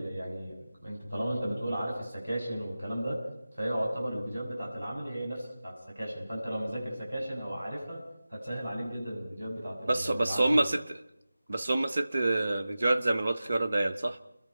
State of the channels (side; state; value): both; inverted; correlation -0.95